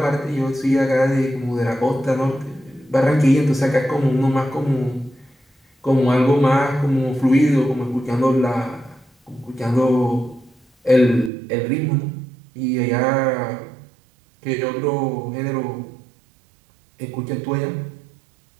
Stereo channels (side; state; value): left; drops out; at 11.3 s